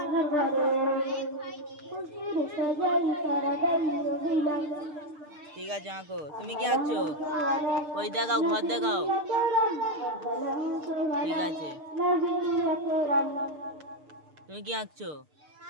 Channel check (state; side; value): late; left; 6.7 ms